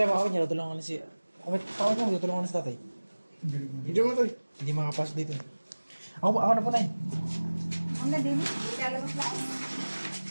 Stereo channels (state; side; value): inverted; both; correlation -1.00